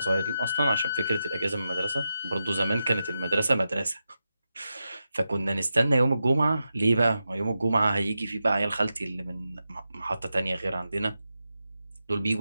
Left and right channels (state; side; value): inverted; both; correlation -0.89